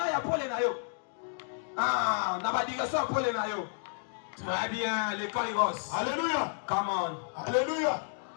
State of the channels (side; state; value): right; silent; digital silence